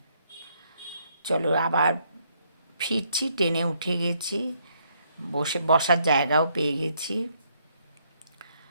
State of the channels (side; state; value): both; inverted; correlation -0.71